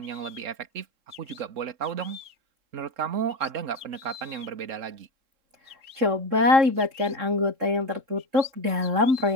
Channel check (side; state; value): left; late; 3.7 ms